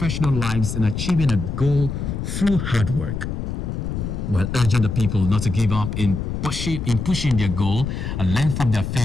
lives in achieving a goal through hard work, while urging the people not to give up in pushing their goal and learn from their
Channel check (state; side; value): noise; left; rumble, 4 dB below the sound